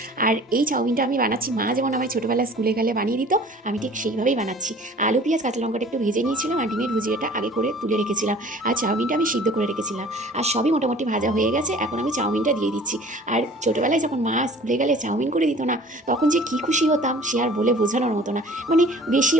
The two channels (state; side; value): normal; both; correlation 0.47